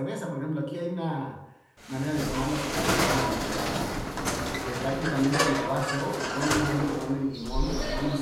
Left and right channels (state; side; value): identical; both; correlation 1.00